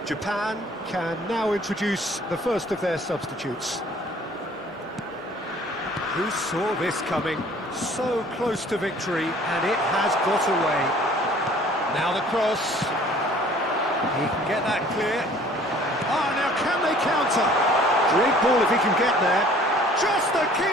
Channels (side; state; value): both; normal; correlation 0.53